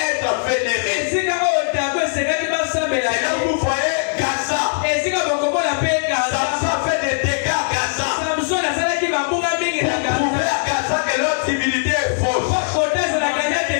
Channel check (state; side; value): silent; right; digital silence